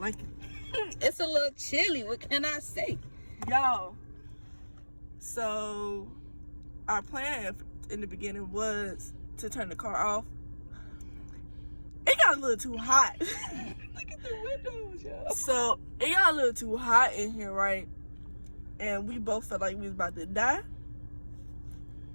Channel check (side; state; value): both; inverted; correlation -1.00